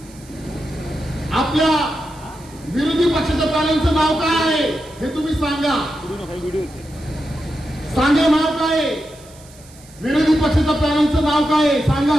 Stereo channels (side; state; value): right; noise; hiss, 24 dB below the sound